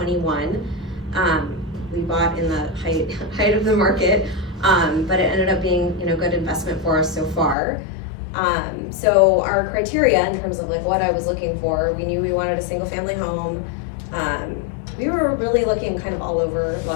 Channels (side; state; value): right; drops out; at 7.6 s